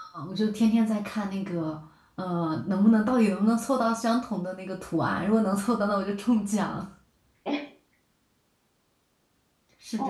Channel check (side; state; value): both; identical; correlation 1.00